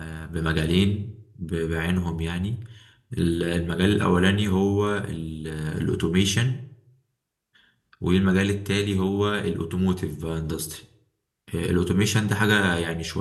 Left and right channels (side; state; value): both; identical; correlation 1.00